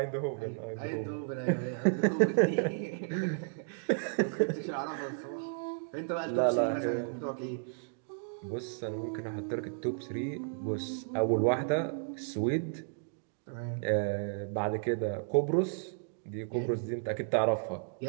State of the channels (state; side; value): silent; left; digital silence